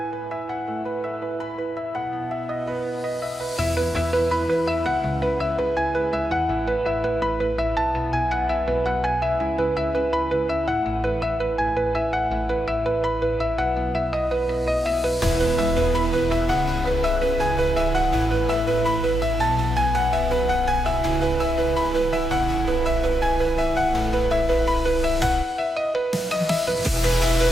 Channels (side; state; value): both; normal; correlation 0.85